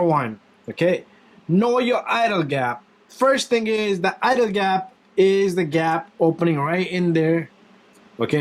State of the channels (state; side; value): identical; both; correlation 1.00